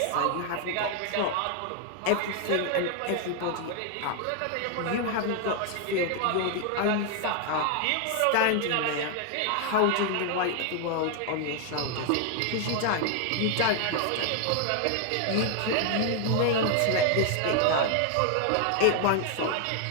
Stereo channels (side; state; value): both; different; correlation 0.00